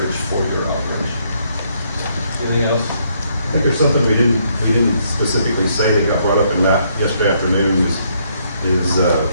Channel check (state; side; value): inverted; both; correlation -0.71